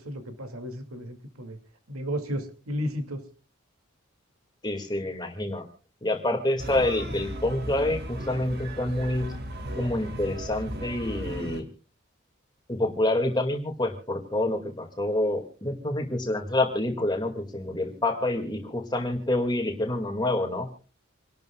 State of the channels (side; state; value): both; normal; correlation 0.62